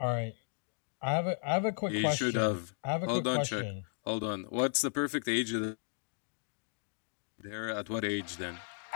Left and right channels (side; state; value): right; silent; digital silence